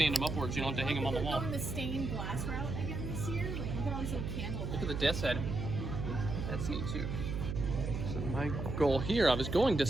him upwards. You don't have to hang him on the We're wall. going the stained glass route again this year. Like, look at all these little candles. Look at the death's head. That's neat too. So my goal here, I was going to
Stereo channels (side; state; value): right; noise; hum, 4 dB below the sound